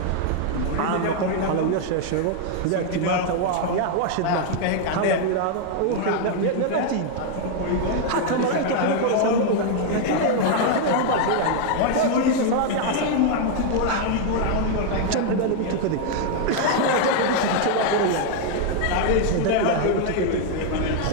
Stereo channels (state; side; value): different; both; correlation 0.00